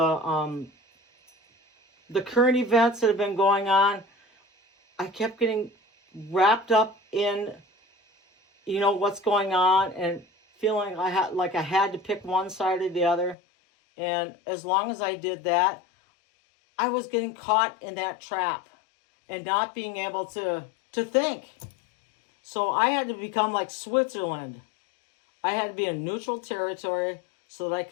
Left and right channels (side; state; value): right; drops out; at 13.4 s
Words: current events that have been going on, I kept getting wrapped up in, what's going on and feeling I had to pick one side or the other. And as long as I did that, I was getting caught in that trap and not being able to think. So I had to become like Switzerland. I had to be in neutral territory so that I